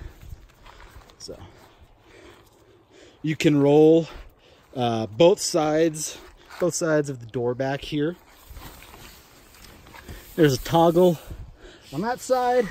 So you can roll both sides of the door back here. There's a toggle on that side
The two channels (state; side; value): identical; both; correlation 1.00